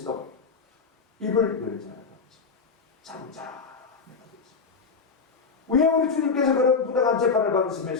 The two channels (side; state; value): right; quieter; 5.1 dB